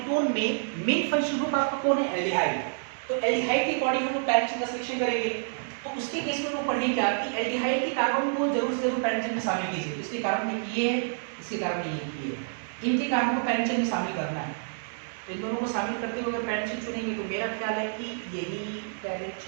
में मेन फंक्शनल ग्रुप आपका कौन है, एल्डिहाइड। तो एल्डिहाइड के अकॉर्डिंग हम लोग पैरेंट चेन का सिलेक्शन करेंगे। तो उसके केस में लोग पढ़ेंगे क्या कि एल्डिहाइड के कार्बन को जरूर से जरूर पैरेंट चेन में शामिल कीजिए। इसके कार्बन में ये है, इसके कार्बन में ये है, इनके कार्बन को पैरेंट चेन में शामिल करना है। तो इन दोनों को शामिल करते हुए अगर पैरेंट चेन चुनेंगे तो मेरा ख्याल है कि यही पैरेंट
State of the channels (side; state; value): left; silent; digital silence